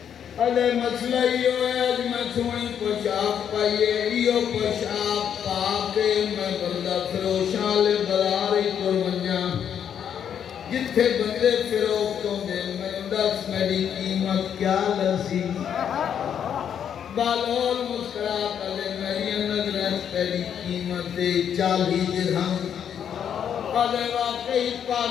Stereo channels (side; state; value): right; quieter; 8.6 dB